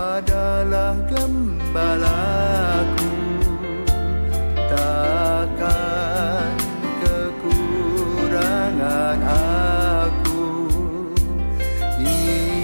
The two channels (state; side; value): inverted; both; correlation -1.00